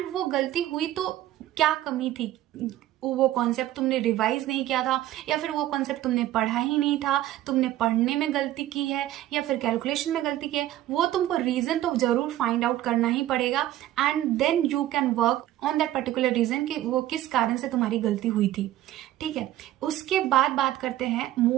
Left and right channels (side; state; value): left; quieter; 14.0 dB